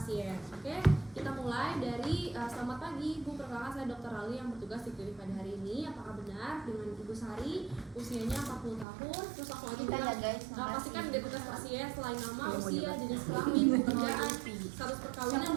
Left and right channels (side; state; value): left; drops out; at 8.8 s